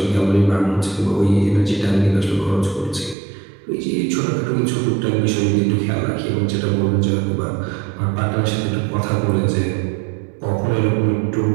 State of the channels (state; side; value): drops out; left; at 3.2 s